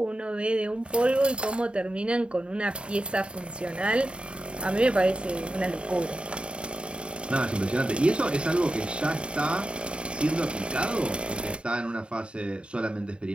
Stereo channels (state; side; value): late; left; 0.055 ms